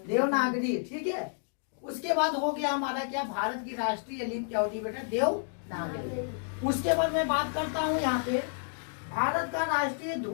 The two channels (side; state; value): right; silent; digital silence